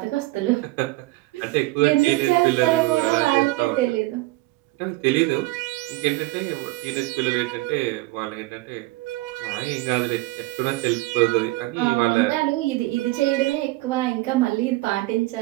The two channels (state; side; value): quieter; left; 20.4 dB